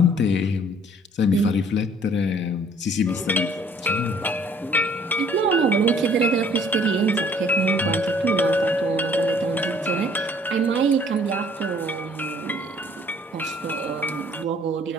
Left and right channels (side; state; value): both; normal; correlation 0.57